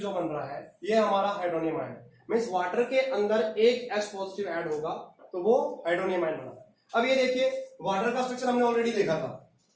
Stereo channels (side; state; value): both; identical; correlation 1.00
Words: जो बन रहा है ये हमारा हाइड्रोनियम आयन है, मीन्स वाटर के अंदर एक H पॉजिटिव ऐड होगा तो वो हाइड्रोनियम आयन बना है। अब ये देखिए वाटर का स्ट्रक्चर हमने ऑलरेडी देखा था,